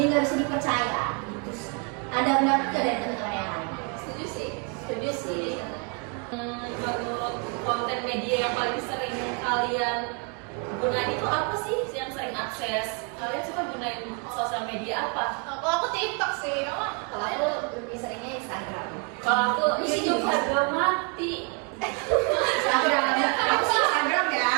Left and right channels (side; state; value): left; quieter; 36.6 dB